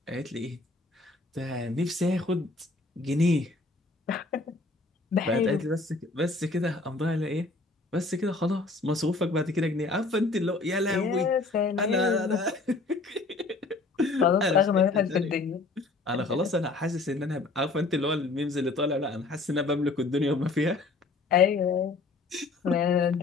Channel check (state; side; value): quieter; right; 3.5 dB